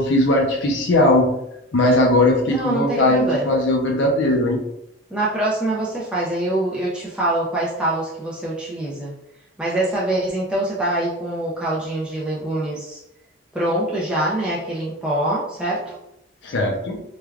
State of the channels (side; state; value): both; normal; correlation 0.29